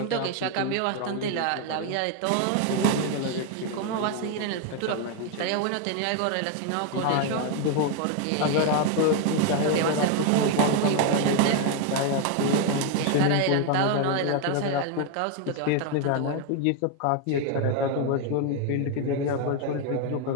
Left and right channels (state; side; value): different; both; correlation 0.01